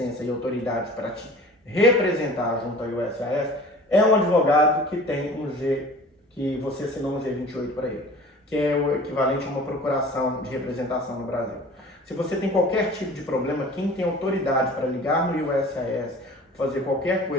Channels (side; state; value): both; normal; correlation 0.43